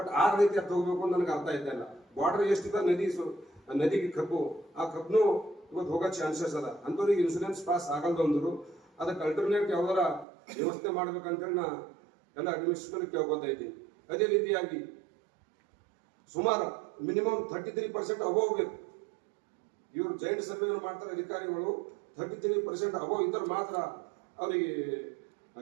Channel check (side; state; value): left; drops out; at 10.2 s